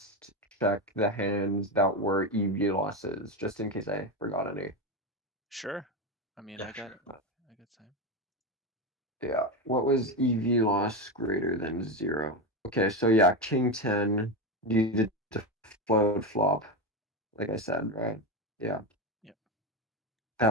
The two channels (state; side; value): normal; both; correlation 0.15